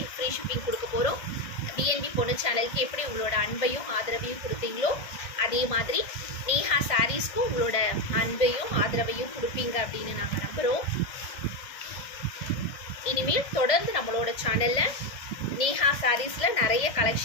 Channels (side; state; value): right; late; 1.6 ms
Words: ஃப்ரீ ஷிப்பிங் கொடுக்க போகிறோம். பிஎன்பி பொண்ணு சேனலுக்கு எப்படி உங்களோட அன்பையும் ஆதரவையும் கொடுப்பீங்களோ அதே மாதிரி நேஹா சாரீஸ்க்கும் உங்களோட அன்பையும் ஆதரவையும் கொடுப்பீங்க அப்படின்னு நாங்கள் நம்புகிறோம். இனிமேல் தொடர்ந்து நம்மளோட சேனலில் நேஹா சாரீஸில் நிறைய